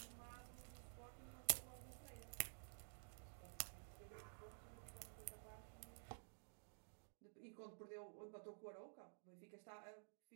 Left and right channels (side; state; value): left; silent; digital silence